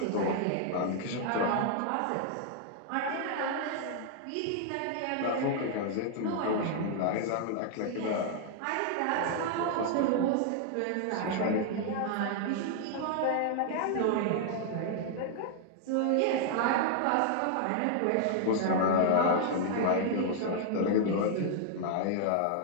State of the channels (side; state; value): both; different; correlation 0.00